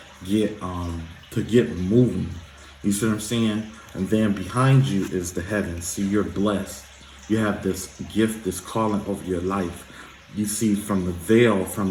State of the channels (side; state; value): both; identical; correlation 1.00